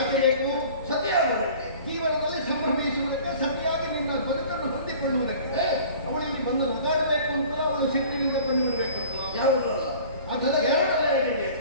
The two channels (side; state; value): both; inverted; correlation -0.46